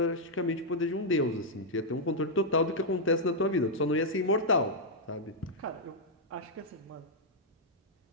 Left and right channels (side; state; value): both; normal; correlation -0.05